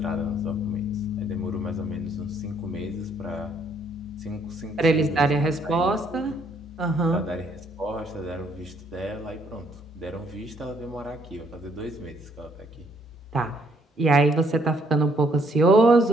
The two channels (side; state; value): both; normal; correlation 0.67